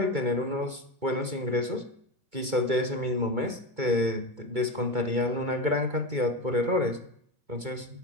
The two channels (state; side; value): late; left; 2.2 ms